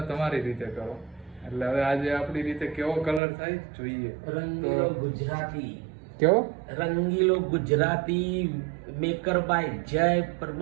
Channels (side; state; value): left; drops out; at 3.2 s